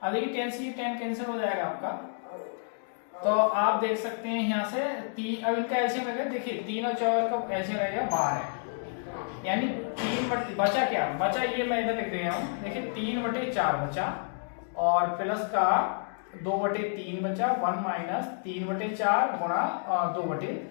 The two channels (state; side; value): silent; right; digital silence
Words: अब ये 10 से 10 कैंसिल हो जाएगा आपका, तो आप देख सकते हैं यहाँ से अब इनका एलसीएम लगेगा, देखिए 3 और 4 का एलसीएम लगेगा 12, यानी 3 बचा क्या, बचा ये मैं इधर लिख रहा हूँ, देखिए 3/4 बचा और प्लस का 2/3 बचा, 1 माइनस 3/4 गुणा